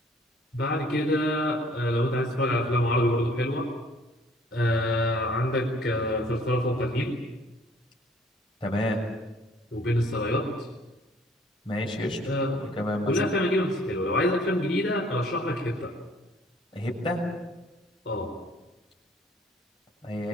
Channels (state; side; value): normal; both; correlation 0.58